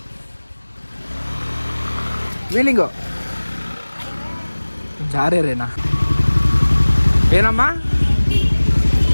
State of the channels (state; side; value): inverted; both; correlation -1.00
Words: ವೀಲಿಂಗು ಜಾರೇನಾ? ಏನಮ್ಮ